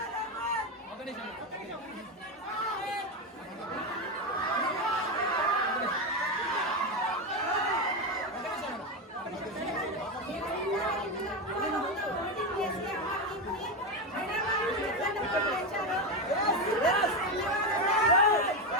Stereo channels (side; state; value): both; normal; correlation 0.13